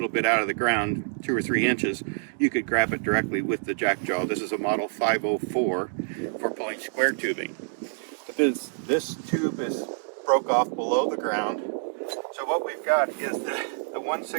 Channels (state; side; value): silent; left; digital silence